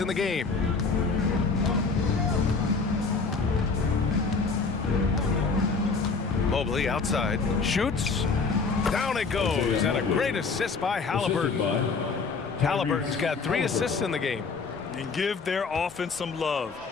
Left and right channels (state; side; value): quieter; right; 4.6 dB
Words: the game. Mobley outside. Shoots. Down it goes. And a great assist by Halliburton. Halliburton's got 3 assists in the game. And give their offense some love.